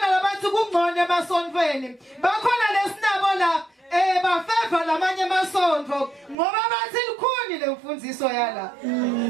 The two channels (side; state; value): left; drops out; at 6.4 s